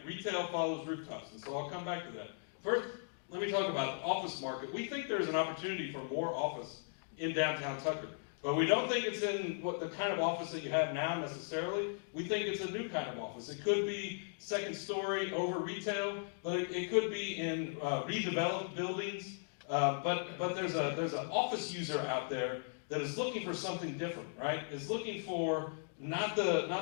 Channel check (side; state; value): right; silent; digital silence